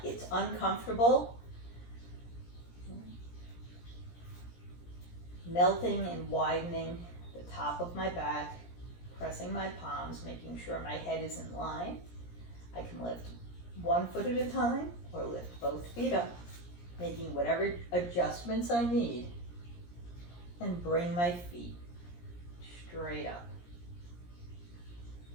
it's uncomfortable. Melting and widening the top of my back, pressing my palms, making sure my head is in line. I can lift one foot at a time or lift both feet up, making whatever adjustments I need, and bring my feet straight up.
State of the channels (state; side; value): late; right; 17 ms